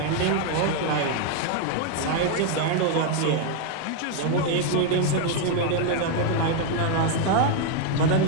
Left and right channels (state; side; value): different; both; correlation 0.00